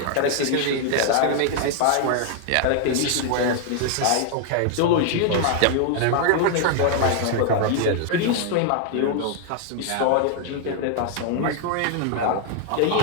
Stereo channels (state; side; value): different; both; correlation 0.00